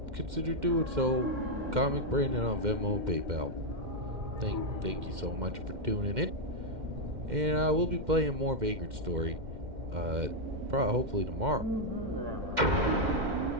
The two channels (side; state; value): left; late; 2.1 ms